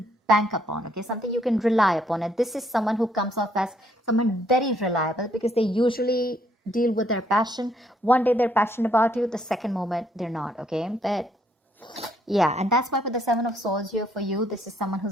bank upon, okay? Something you can rely upon. And this is someone who comes off as someone very reliable, because they usually deal with their passion. One day they're passionate about you, the second moment they're not, okay? But yeah, and that's why with the Seven of Swords here for you, this is someone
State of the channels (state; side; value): normal; both; correlation 0.70